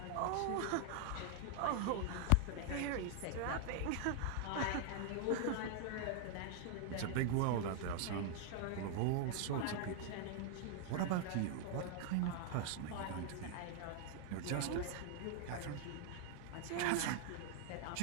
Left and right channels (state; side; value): different; both; correlation 0.00